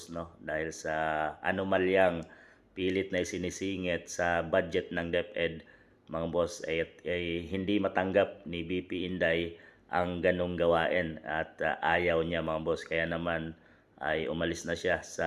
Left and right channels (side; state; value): both; identical; correlation 1.00